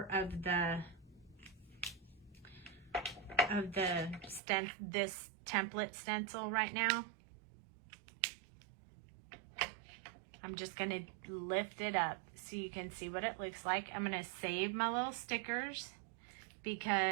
of this template stencil right now. I'm just going to lift it up so you can see what it looks like. I'm going to save my little stickers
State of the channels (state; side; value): drops out; left; at 4.4 s